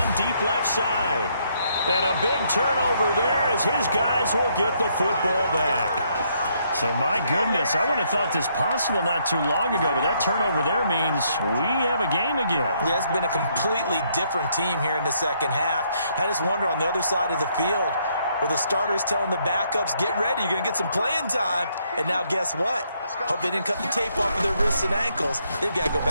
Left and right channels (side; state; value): both; inverted; correlation -0.72